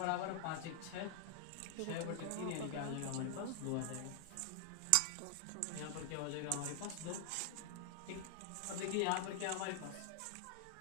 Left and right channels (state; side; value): different; both; correlation -0.01